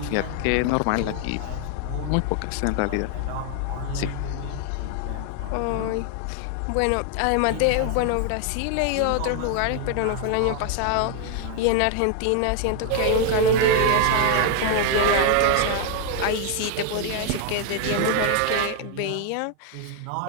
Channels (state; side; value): different; both; correlation 0.00